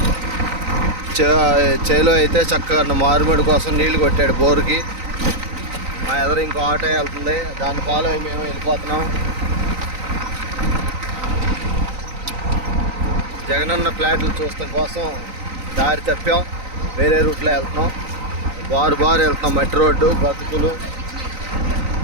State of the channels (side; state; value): left; late; 3.9 ms